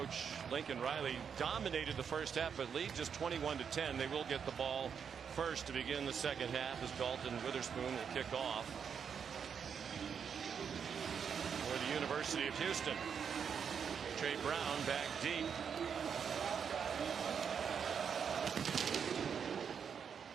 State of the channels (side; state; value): left; quieter; 7.1 dB